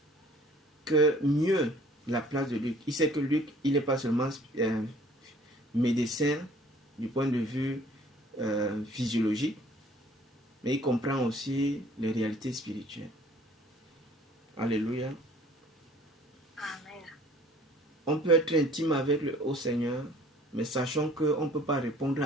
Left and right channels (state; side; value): normal; both; correlation 0.54